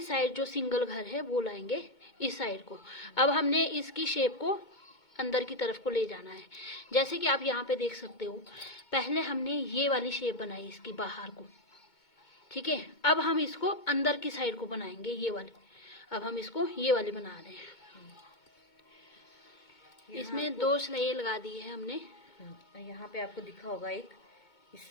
साइड जो सिंगल घर है वो लाएंगे इस साइड को। अब हमने इसकी शेप को अंदर की तरफ को ले जाना है। जैसे कि आप यहाँ पे देख सकते हो, पहले हमने ये वाली शेप बनाई इसकी बाहर को, ठीक है। अब हम इसको अंदर की साइड को बनाएंगे, ये वाली। अब हम इसको ये वाली बना रहे हैं। इसमें 2 सिलाई लगा दी है हमने। यहाँ पे आपको दिखा होगा एक इस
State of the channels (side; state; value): right; late; 2.2 ms